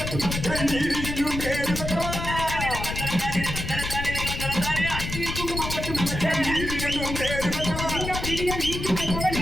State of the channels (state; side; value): noise; left; rumble, 5 dB below the sound